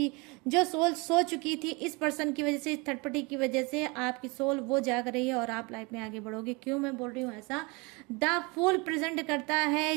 सोल सो चुकी थी इस पर्सन की वजह से, इस थर्ड पार्टी की वजह से, आपकी सोल वो जाग रही है और आप लाइफ में आगे बढ़ोगे। क्यों मैं बोल रही हूँ ऐसा, द फूल प्रेजेंट करता है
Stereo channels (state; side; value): quieter; left; 27.9 dB